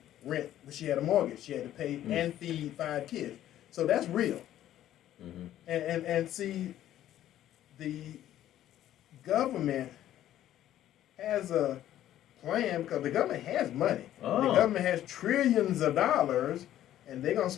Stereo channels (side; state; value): right; quieter; 12.4 dB